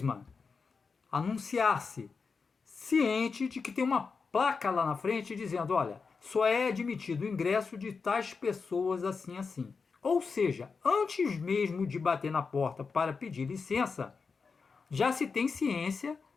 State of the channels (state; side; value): quieter; right; 5.0 dB